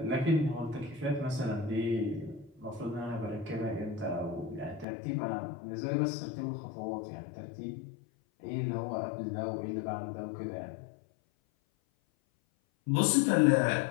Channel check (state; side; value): drops out; right; at 4.9 s